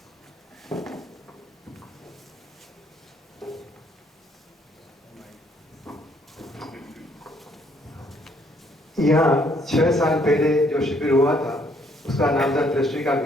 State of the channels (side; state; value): both; normal; correlation 0.67